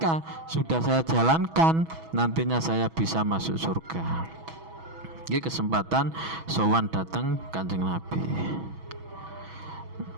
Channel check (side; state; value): left; late; 6.2 ms